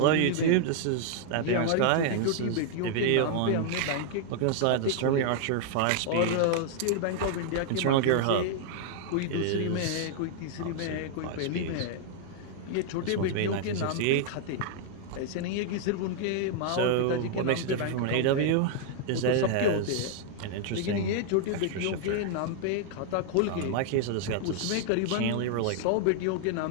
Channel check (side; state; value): both; different; correlation 0.00